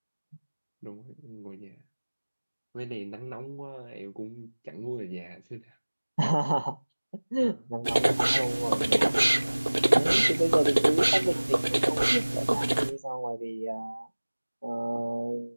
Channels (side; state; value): both; inverted; correlation -1.00